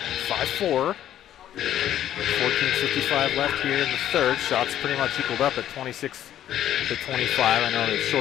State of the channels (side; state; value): right; quieter; 11.5 dB